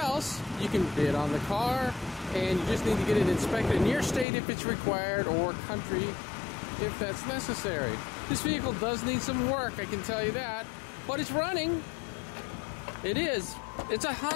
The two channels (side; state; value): right; drops out; at 4.2 s